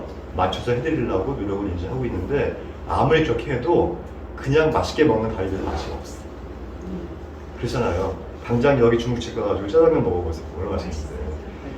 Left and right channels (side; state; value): both; identical; correlation 1.00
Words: 맞춰서 해드리려고 노력을 이제 하고 있는데 아무리 그렇게 해도 그냥 맛있게 먹는 가위들은 맛이 없어. 그렇잖아요. 당장 여기 중국집 가가지고 짜장면 먹어보세요. 얼마나 맛있어요.